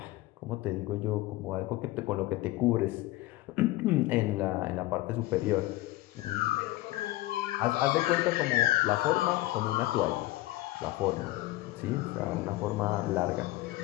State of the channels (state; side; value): quieter; right; 17.6 dB